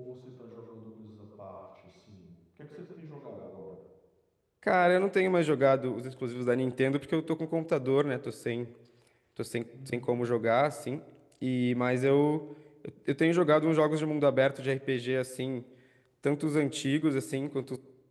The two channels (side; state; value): both; identical; correlation 1.00